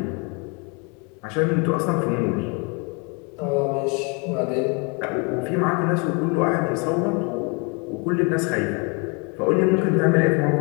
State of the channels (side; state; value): right; quieter; 32.7 dB